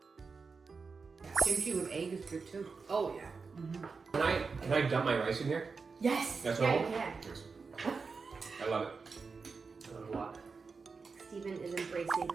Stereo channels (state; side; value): quieter; left; 4.8 dB